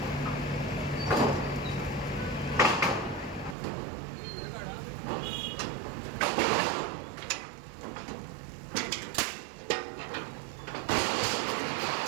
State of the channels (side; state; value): left; drops out; at 3.6 s